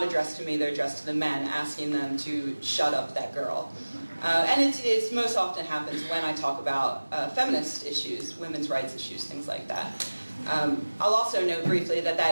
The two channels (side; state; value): both; inverted; correlation -1.00